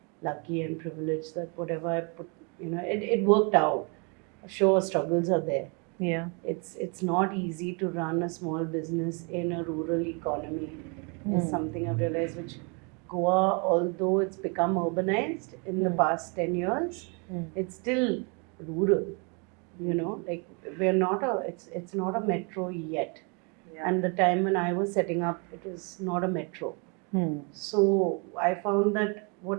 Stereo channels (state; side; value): quieter; left; 34.2 dB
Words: lucky and privileged that whatever I put, it worked out. Sure, struggles are there. Yeah. It's not easy to run a small business in a rural economy. Is something I've realized. Which Goa, although it's become urbanized in the past 10 years, it's still rural. Like we're not it's not a metro yet. Yeah. And the time when I was setting up, it was not a metro. So I found that